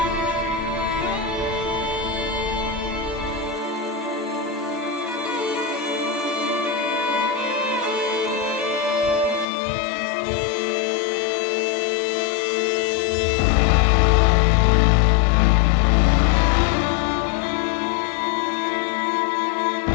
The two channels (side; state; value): right; drops out; at 9.5 s